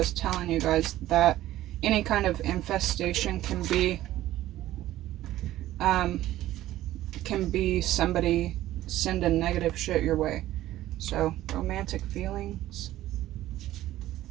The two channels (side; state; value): left; quieter; 14.5 dB